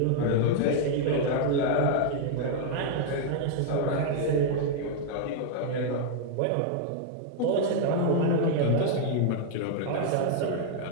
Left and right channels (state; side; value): different; both; correlation 0.00